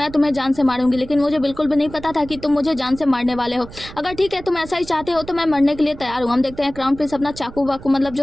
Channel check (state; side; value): noise; right; rumble, 16 dB below the sound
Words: तुम्हें जान से मारूंगी, लेकिन मुझे बिल्कुल भी नहीं पता था कि तुम मुझे जान से मारने वाले हो। अगर ठीक है तुम ऐसा ही चाहते हो तो मैं मरने के लिए तैयार हूँ। हम देखते हैं क्राउन प्रिंस अपना चाकू वाकू मतलब